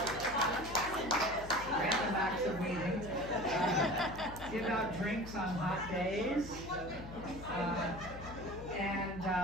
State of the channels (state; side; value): noise; left; hum, 13 dB below the sound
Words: acts of weeding. Give out drinks on hot days.